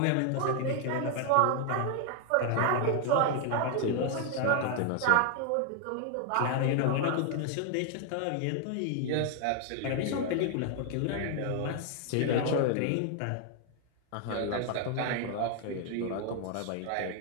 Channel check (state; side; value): different; both; correlation 0.00